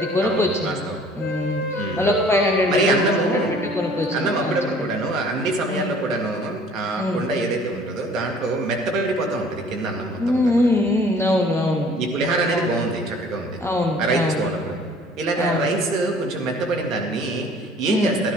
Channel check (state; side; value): normal; both; correlation 0.53